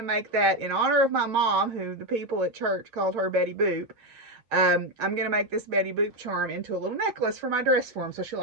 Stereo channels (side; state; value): left; late; 7.1 ms